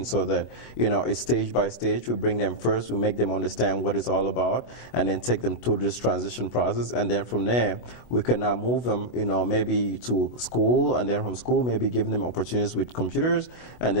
so that it's stage by stage. We bring them first, we make them understand what it's all about, and then take them through this transition process, and then from there we can now move them, maybe to school, and then from school maybe giving them opportunities with computers, and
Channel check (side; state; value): right; late; 7.9 ms